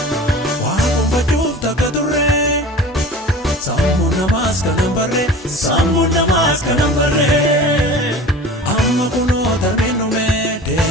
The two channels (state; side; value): normal; both; correlation 0.39